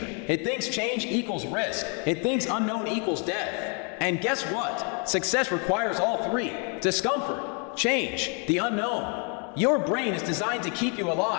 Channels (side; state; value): right; quieter; 37.4 dB